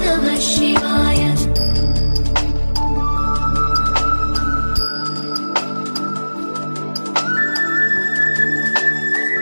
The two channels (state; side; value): inverted; both; correlation -1.00